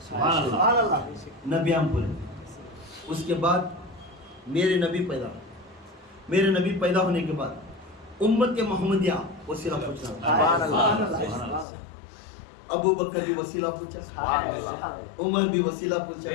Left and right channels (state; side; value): drops out; right; at 11.7 s